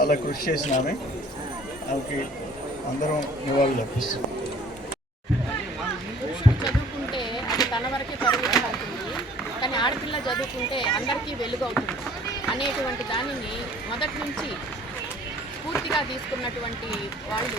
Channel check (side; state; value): both; normal; correlation 0.53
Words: కృషి చేసిన ఆమెకి అందరం నివాళులు అర్పిస్తున్నాం. చదువుకుంటే అది తన వరకే పరిమితం అవుతుంది, కానీ ఆడపిల్ల చదువుకుంటే అందరికీ వెలుగు అవుతుంది అనేటువంటి దానిని మొదటి నుంచి స్ఫూర్తిగా తీసుకున్నటువంటి